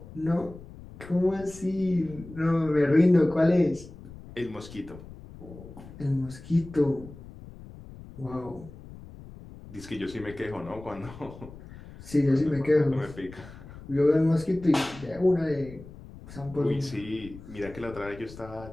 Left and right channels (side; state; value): left; noise; rumble, 17 dB below the sound